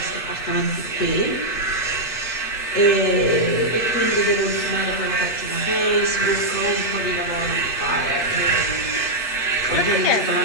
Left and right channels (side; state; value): right; late; 8.4 ms